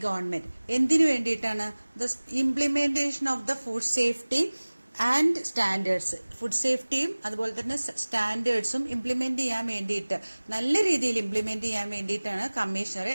government. എന്തിനു വേണ്ടിയിട്ടാണ്? The implementation of the food safety and standards. Food സേഫ്റ്റിയും അതുപോലെ തന്നെ സ്റ്റാൻഡേർഡ്സും ഇംപ്ലിമെന്റ് ചെയ്യാൻ വേണ്ടിയിട്ട്, നല്ല രീതിയിൽ ഇംപ്ലിമെന്റ് ചെയ്യാൻ വേണ്ടിയിട്ടാണ് കമ്മീഷണറെ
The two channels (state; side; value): inverted; both; correlation -1.00